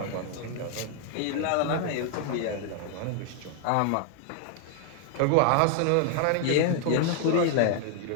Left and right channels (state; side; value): different; both; correlation 0.00